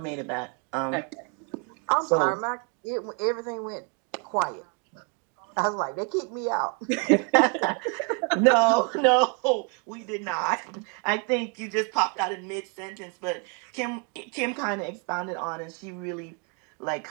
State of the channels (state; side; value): quieter; left; 35.8 dB